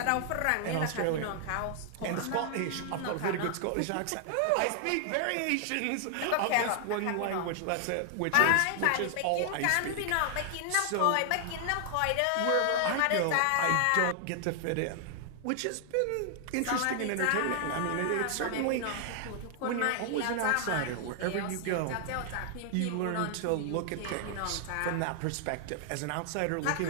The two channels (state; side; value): different; both; correlation 0.00